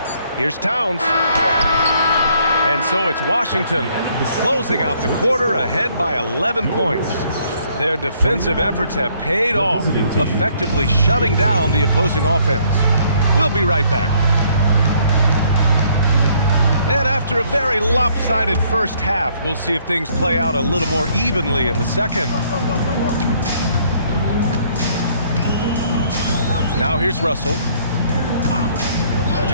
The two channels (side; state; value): both; inverted; correlation -0.65